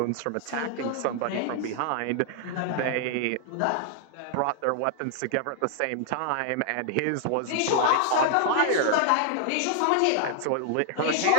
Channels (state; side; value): different; both; correlation 0.00